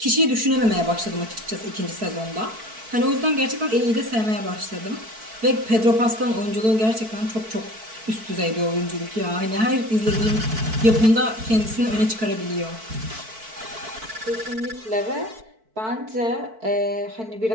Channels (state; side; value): late; left; 4.5 ms